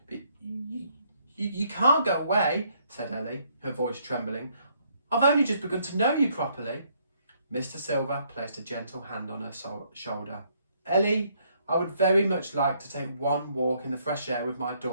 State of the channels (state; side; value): inverted; both; correlation -0.69